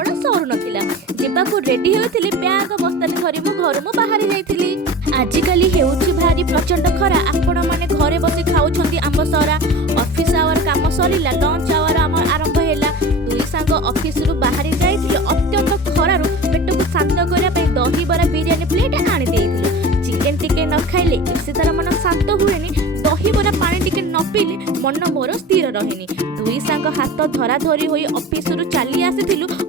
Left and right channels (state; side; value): normal; both; correlation 0.35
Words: सरू नाला जावाक रेडी होती बैग बस्तानी धरी मु घर मु बाहरी जाइली। आजिकली हेउछि भारी प्रचंड खरा आपण माने घरे बसी खाउछंती आंब सरा ऑफिस आवर काम सरीला लंच आवर आम आरंभ हैला दुई सांग ऑफिस रु बाहरी जाइथिले अत्यंत खरारु पेट को शांत करिया पे दही बरा बिरयानी प्लेट आनी देइथिलु चिकन टिके न खाइले इसे तार मन शांत हुएनी दही बरा पानी टिके न पीले मन मोर स्थिर रहेनी दुई सांग हाथ धरा धरी होई ऑफिस रु चली आसीथिलु